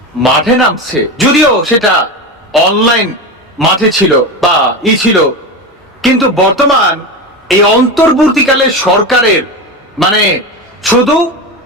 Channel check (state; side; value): normal; both; correlation 0.21